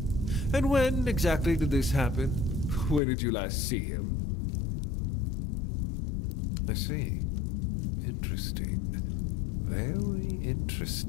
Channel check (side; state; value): right; drops out; at 3.0 s